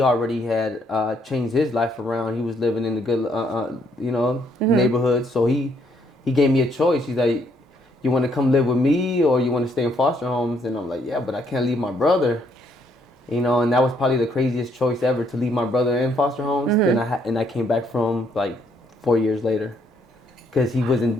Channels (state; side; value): normal; both; correlation 0.70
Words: had changed his life around. He was living in the good, you know, neighborhood. So he gave me a choice. He's like, you want to come live with me or you want to stay in foster homes? And I'm like, yeah, but I can't leave my brother. You know, and that was probably the craziest choice ever, to leave my brother in foster homes. Then I came back from like 4 years later. Because he